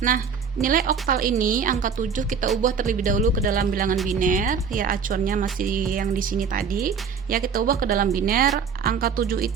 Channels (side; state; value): left; quieter; 6.3 dB